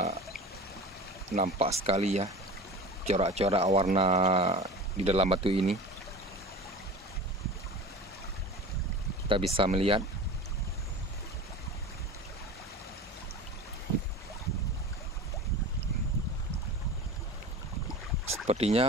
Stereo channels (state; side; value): normal; both; correlation 0.35